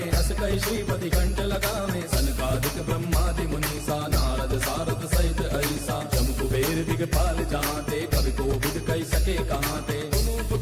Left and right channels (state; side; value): identical; both; correlation 1.00